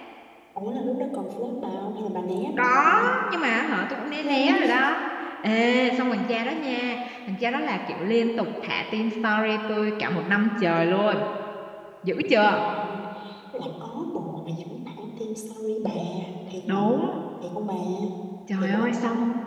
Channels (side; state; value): both; identical; correlation 1.00